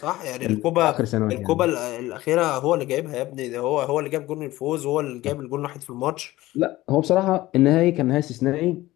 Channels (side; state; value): right; quieter; 17.3 dB